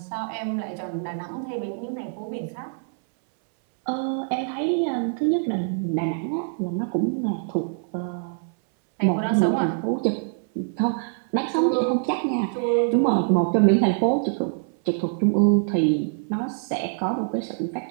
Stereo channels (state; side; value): silent; left; 62 dB below the other